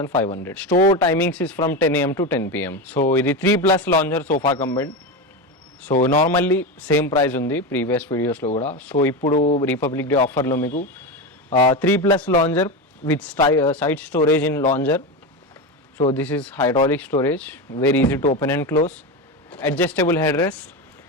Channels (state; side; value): normal; both; correlation 0.18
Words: Store timings is from 10 AM to 10 PM. So ఇది 3+ lounger sofa cum bed. So normally same price ఉంది ప్రీవియస్ వీడియోస్లో కూడా. సో ఇప్పుడు రిపబ్లిక్ డే ఆఫర్లో మీకు 3+ launcher with side storage in launcher. So this is hydraulic storage, very easy to open and close, adjustable headrest,